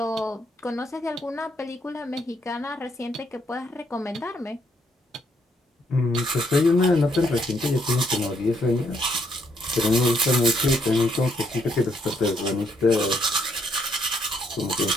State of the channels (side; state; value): both; normal; correlation 0.72